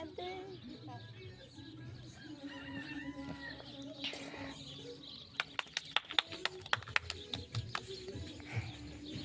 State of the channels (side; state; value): both; identical; correlation 1.00